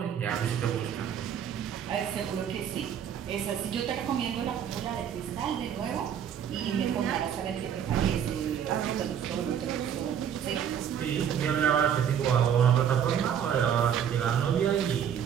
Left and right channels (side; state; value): left; quieter; 8.8 dB